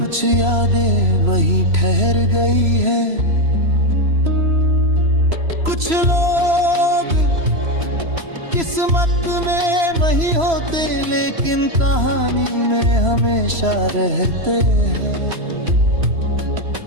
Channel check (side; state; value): left; late; 3.0 ms